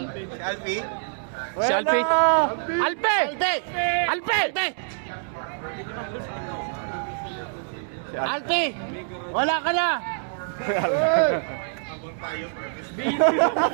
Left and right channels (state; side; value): silent; left; 61 dB below the other